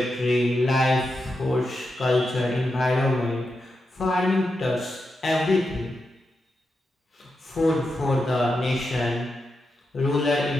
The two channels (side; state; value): both; normal; correlation 0.87